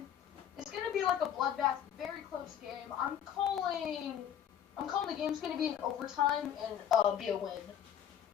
it's gonna be like a bloodbath, very close game. I'm calling the game's gonna be in overtime and be a win.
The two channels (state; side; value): quieter; right; 9.5 dB